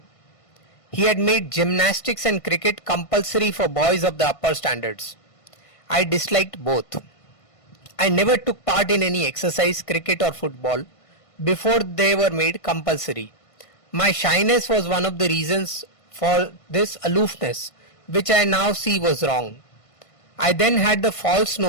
He had made gymnastics and cricket compulsory for boys of the upper standards. I disliked both. I never took part in any exercise, cricket or football before they were made compulsory. My shyness was one of the reasons for this aloofness, which I now see was wrong. I then had the false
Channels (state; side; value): late; right; 1.5 ms